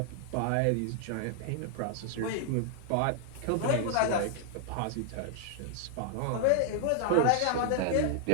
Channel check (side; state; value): both; different; correlation 0.00